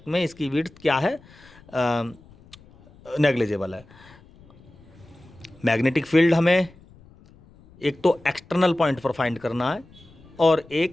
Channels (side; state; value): left; noise; rumble, 25 dB below the sound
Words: में इसकी विड्थ क्या है, नेग्लिजिबल है। मैग्नेटिक फील्ड हमें एक तो एक्सटर्नल पॉइंट पर फाइंड करना है और